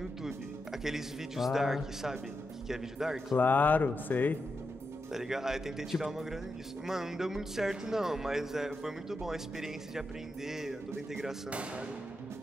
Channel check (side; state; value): both; normal; correlation 0.86